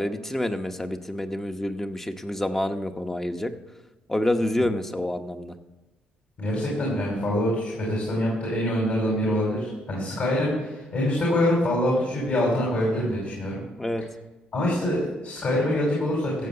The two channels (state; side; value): normal; both; correlation 0.74